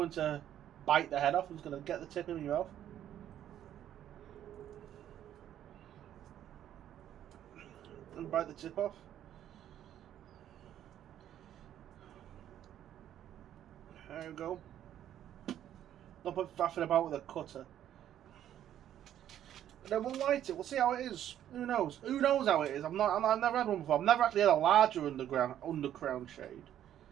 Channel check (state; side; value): quieter; left; 11.0 dB